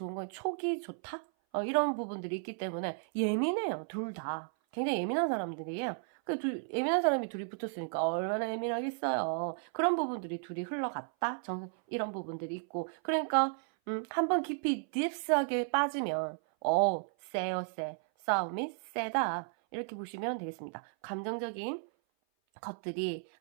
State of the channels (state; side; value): silent; left; 55 dB below the other